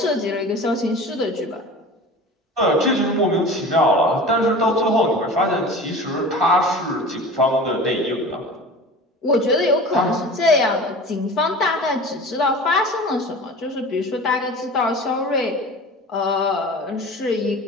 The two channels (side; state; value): both; normal; correlation 0.37